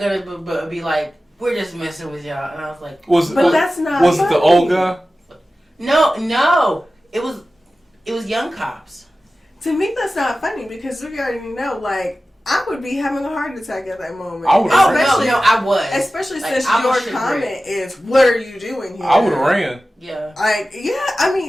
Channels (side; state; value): both; normal; correlation 0.95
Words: be like, we're just messing with y'all, and I was like, That's not. Was funny. it the old guy? no, it was young cops. To me, that's not funny because we already know, like, I would be having a heart attack at that moment. I would've especially, no, I was. Especially Like, since I your was comment is, "What are you doing here?" I would have ran. Yeah. Like, yeah, I